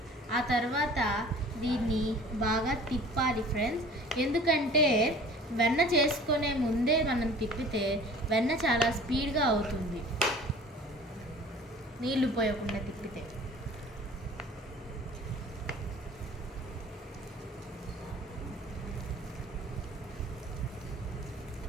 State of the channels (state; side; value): normal; both; correlation 0.46